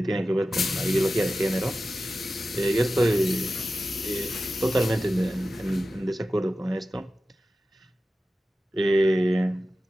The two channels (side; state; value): both; normal; correlation 0.93